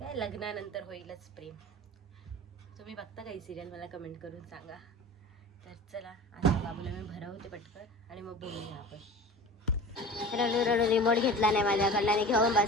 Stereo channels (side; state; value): both; normal; correlation 0.36